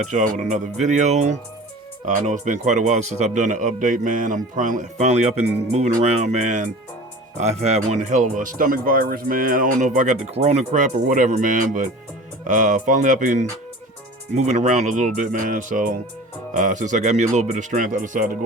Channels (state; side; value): normal; both; correlation 0.39